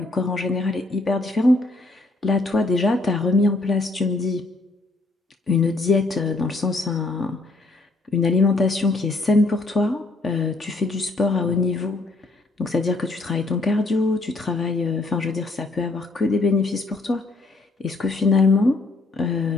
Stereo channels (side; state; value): right; quieter; 3.1 dB